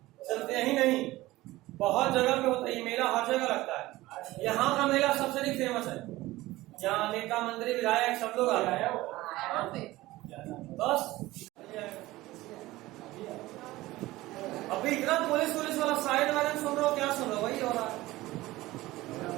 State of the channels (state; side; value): quieter; left; 18.1 dB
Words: सिर्फ यही नहीं बहुत जगह पे होता है ये मेला, हर जगह लगता है। यहाँ का मेला सबसे अधिक फेमस है, यहाँ नेता मंत्री विधायक सब लोग आ रहे हैं। कहाँ पे? बस अभी इतना पुलिस वाला साइड वाले सुन रहे हो, क्या सुन रहे हो? वही हो रहा है।